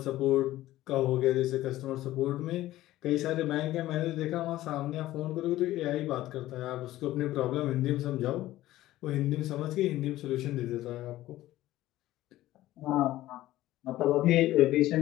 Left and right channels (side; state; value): right; quieter; 15.4 dB